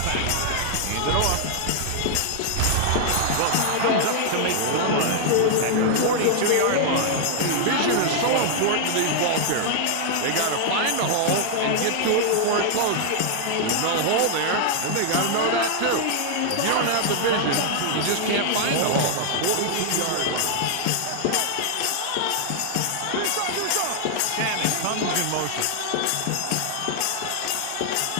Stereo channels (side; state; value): both; different; correlation -0.01